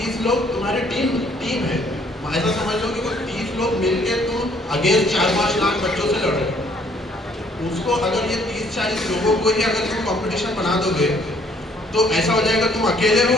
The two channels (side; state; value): both; normal; correlation 0.63